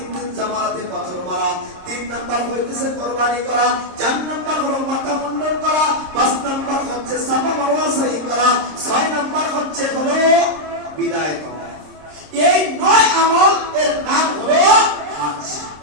দিন জামারাতে পাথর মারা, 3 নম্বর হইতেছে কুরবানি করা, 4 নম্বর হলো মাথা মুন্ডন করা, 5 নম্বর হচ্ছে সাফা মারওয়া সাই করা, 6 নম্বর হচ্ছে হলো বিদায় করা। এই 9 আমল এর নাম হলো হজ।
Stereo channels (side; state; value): left; late; 26 ms